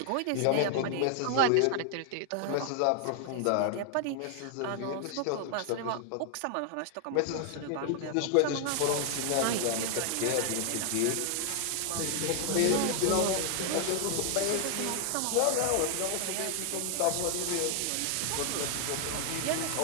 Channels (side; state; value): both; different; correlation 0.00